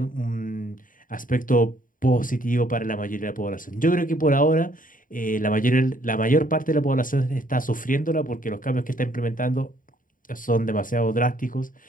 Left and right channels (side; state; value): right; late; 0.39 ms